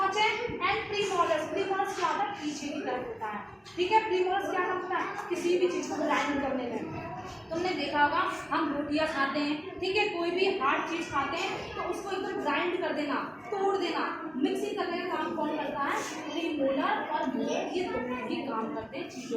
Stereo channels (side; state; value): both; identical; correlation 1.00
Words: एंड प्रीमोलर्स, प्रीमोलर्स क्या होता है? पीछे की तरफ होता है। ठीक है, प्रीमोलर्स क्या काम करता है? किसी भी चीज को ग्राइंड करने में। तुमने देखा होगा हम रोटियां खाते हैं, ठीक है, कोई भी हार्ड चीज खाते हैं तो उसको एकदम ग्राइंड कर देना, तोड़ देना, मिक्सिंग करने का काम कौन करता है? प्रीमोलर और मोलर, ये दोनों ही काम करते हैं चीजों